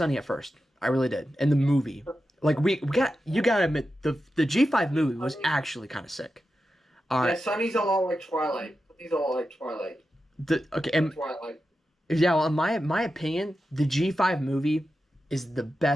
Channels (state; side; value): normal; both; correlation 0.90